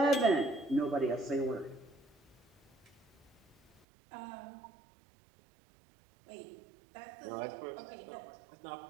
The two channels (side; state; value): left; drops out; at 3.8 s